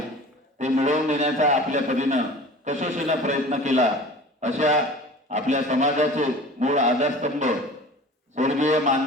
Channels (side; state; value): both; normal; correlation 0.41